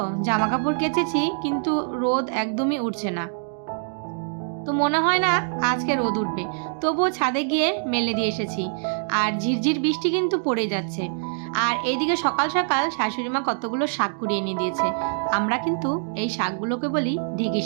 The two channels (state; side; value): silent; left; digital silence